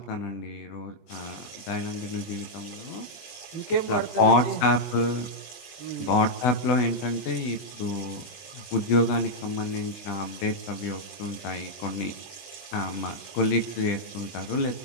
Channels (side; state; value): right; late; 20 ms